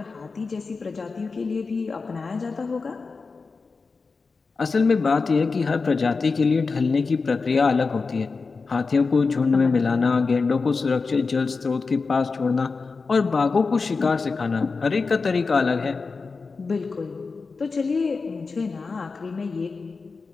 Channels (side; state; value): right; quieter; 4.4 dB